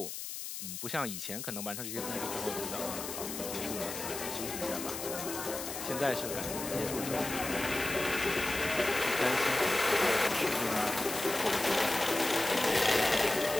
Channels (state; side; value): noise; left; hiss, 7 dB below the sound